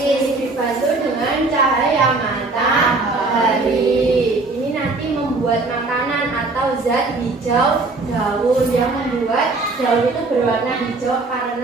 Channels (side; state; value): left; quieter; 3.5 dB